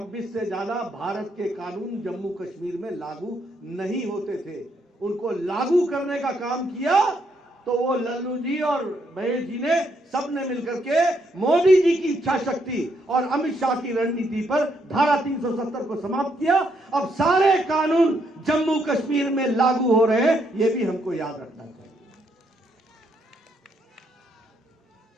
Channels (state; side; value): normal; both; correlation 0.75